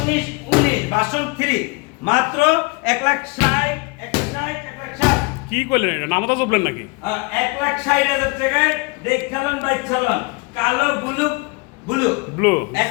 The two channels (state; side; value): quieter; right; 28.9 dB